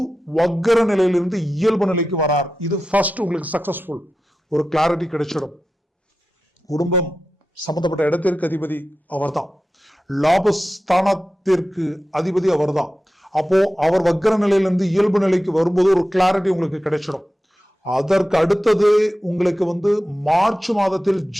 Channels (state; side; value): normal; both; correlation 0.93